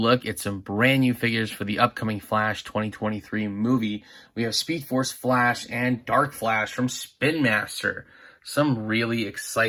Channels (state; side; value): identical; both; correlation 1.00